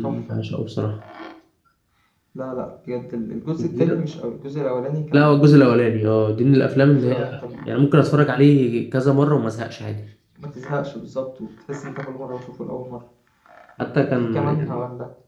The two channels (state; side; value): identical; both; correlation 1.00